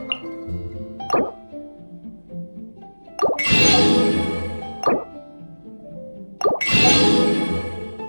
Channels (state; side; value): inverted; both; correlation -1.00